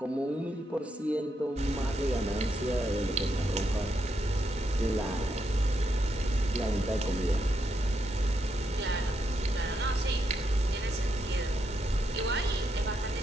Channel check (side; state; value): both; normal; correlation 0.80